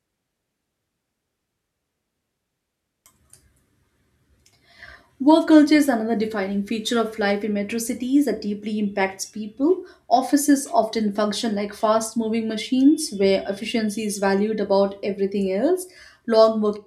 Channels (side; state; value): both; identical; correlation 1.00